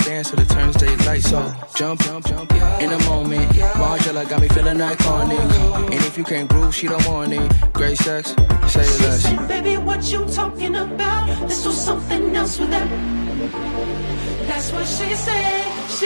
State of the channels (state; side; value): inverted; both; correlation -1.00